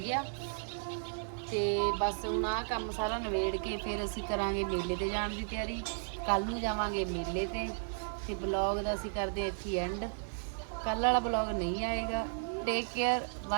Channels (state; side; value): silent; left; digital silence